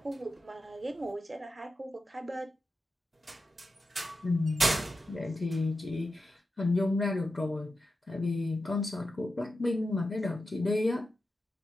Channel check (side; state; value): both; normal; correlation 0.91